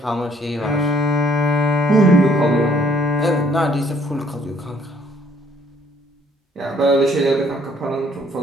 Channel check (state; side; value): normal; both; correlation 0.63